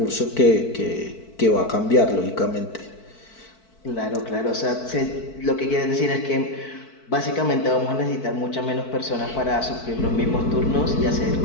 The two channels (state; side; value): late; right; 4.6 ms